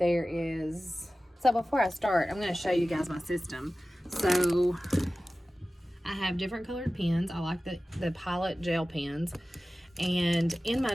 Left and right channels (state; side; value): normal; both; correlation 0.96